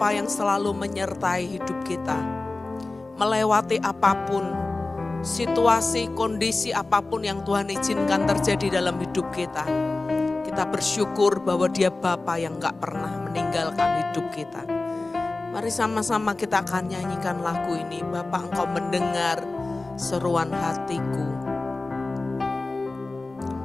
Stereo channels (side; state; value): right; quieter; 3.3 dB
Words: yang selalu menyertai hidup kita. Melewati apapun, situasi, kondisi apapun yang Tuhan izinkan terjadi dalam hidup kita. Kita bersyukur bahwa Dia Bapa yang gak pernah meninggalkan hidup kita. Mari sama-sama kita akan nyanyikan lagu ini. Bapa, Engkau mendengar seruan hatiku.